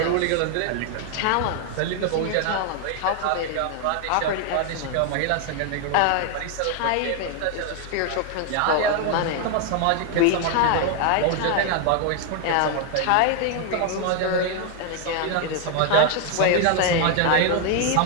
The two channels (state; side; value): different; both; correlation 0.00